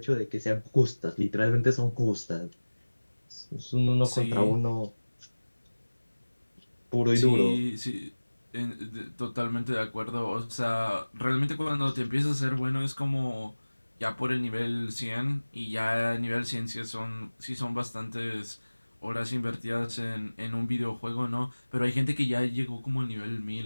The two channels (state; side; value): inverted; both; correlation -1.00